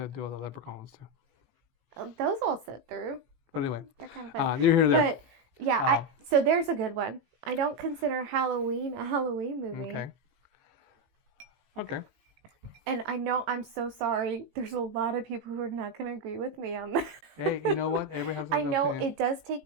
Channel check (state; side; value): late; left; 18 ms